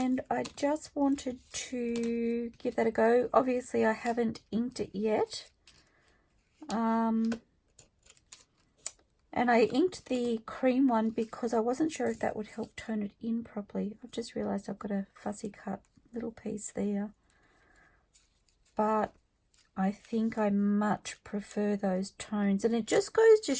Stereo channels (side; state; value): both; identical; correlation 1.00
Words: I just wanted to give that a go. Obviously I haven't inked it yet. And I inked the cream one because I wasn't sure if that would help tone it in properly. I've just realised I've got a fussy cut little piece there. But I think I much prefer those tones. And it just goes to